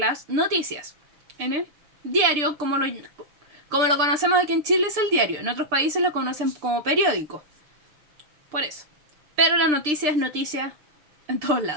noticias. En el diario, como lo conocemos aquí en Chile, es el diario. En otros países lo conocen como periódico. Por eso. Pero la noticia es noticia en todos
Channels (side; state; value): left; late; 6.7 ms